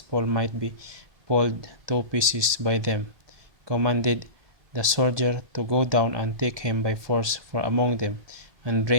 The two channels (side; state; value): left; late; 1.8 ms